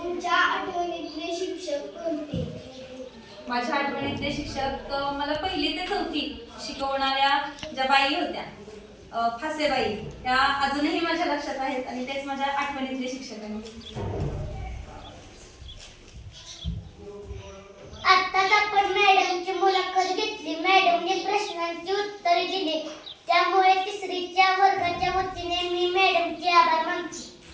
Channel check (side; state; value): both; identical; correlation 1.00